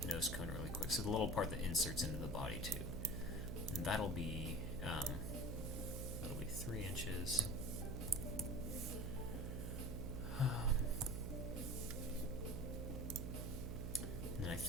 nose cone really quick. So the little part that inserts into the body tube, and that'll be 3 inches. And I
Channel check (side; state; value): right; noise; hum, 2 dB below the sound